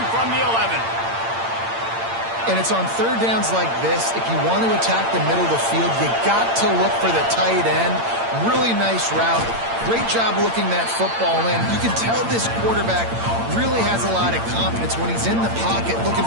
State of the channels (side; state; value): left; late; 8.8 ms